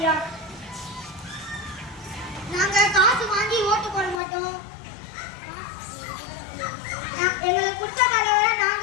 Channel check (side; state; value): right; drops out; at 4.2 s